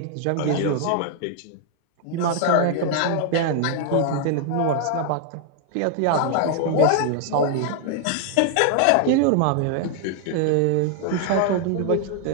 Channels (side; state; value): both; different; correlation 0.00